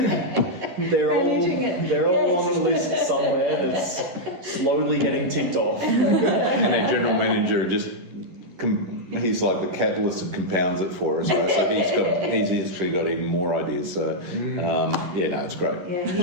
They're all on a list somewhere that's slowly getting ticked off. And our general manager he's like the catalyst that compounds it for us. Right? So he's actually got even more ideas. So it's great. Yeah,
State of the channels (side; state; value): left; late; 11 ms